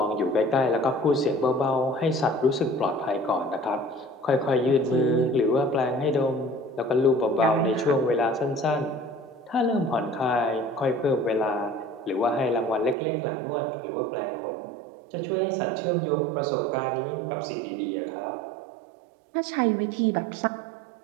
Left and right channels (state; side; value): drops out; left; at 13.0 s